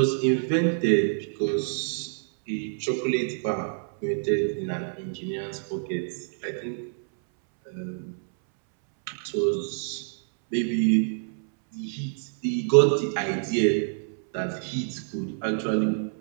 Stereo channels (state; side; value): silent; left; 60 dB below the other